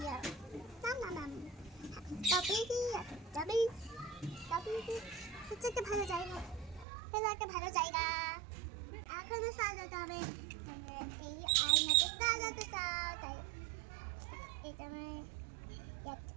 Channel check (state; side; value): drops out; left; at 6.9 s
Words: হচ্ছে একটা ভালো জায়গা, হলো একটা ভালো জায়গা। এখনো সাজাতে হবে, এই আয়নাতে সাজাতে চাও তাই এটা